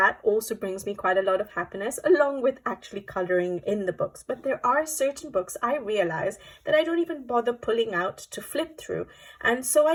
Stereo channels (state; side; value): identical; both; correlation 1.00